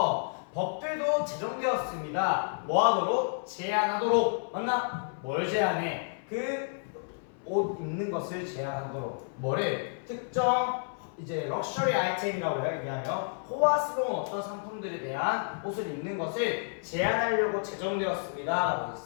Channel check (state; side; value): silent; right; 58 dB below the other